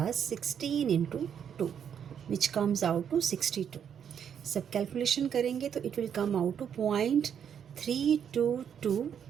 16 into 2 which comes out to 62। सब कैलकुलेशन करेंगे तो it will come out to 0.322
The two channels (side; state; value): left; quieter; 8.2 dB